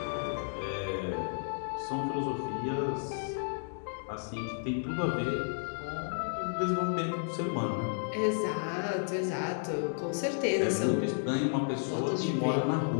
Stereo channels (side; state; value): right; silent; digital silence